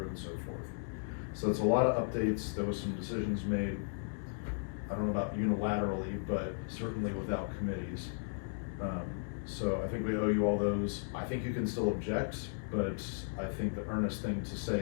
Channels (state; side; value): silent; right; digital silence